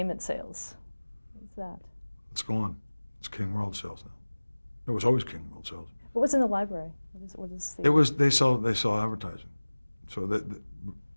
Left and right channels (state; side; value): inverted; both; correlation -1.00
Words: sales. What's that? It's gone. It's King World sales now. It was always King World sales. What was in the library? What is the... It was they sell advertising. So